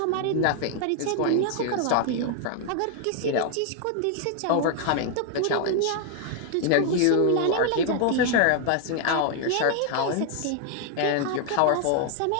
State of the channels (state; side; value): different; both; correlation 0.00